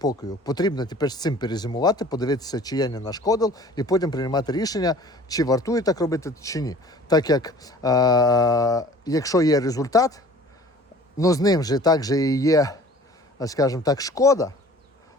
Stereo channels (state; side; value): normal; both; correlation 0.47